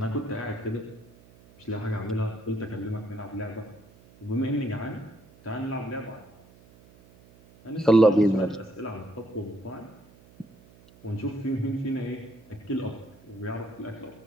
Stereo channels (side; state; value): right; noise; hum, 25 dB below the sound